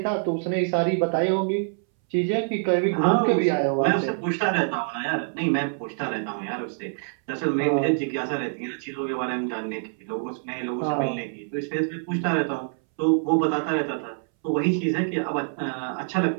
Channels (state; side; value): silent; left; 61 dB below the other